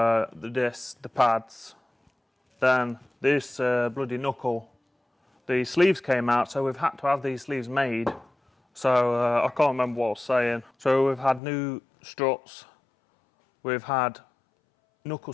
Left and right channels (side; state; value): right; drops out; at 11.4 s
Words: discs, the pads. Then this bloody knuckle, the sleeves came out, so we've had to have these sleeves made. So I can't remember what I was saying. So we've had new struts, we've had knuckle